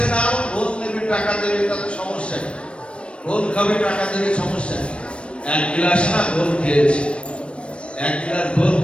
না, ঘোল নেবে, টাকা দেবে, তাতে সমস্যা নেই। ঘোল খাবে, টাকা দেবে, সমস্যা নেই। এক গ্লাস না ঘোল খেয়েছে, এক গ্লাস ঘোল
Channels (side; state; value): right; late; 0.059 ms